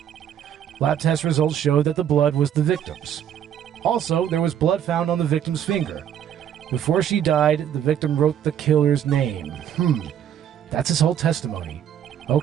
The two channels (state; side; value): quieter; left; 9.6 dB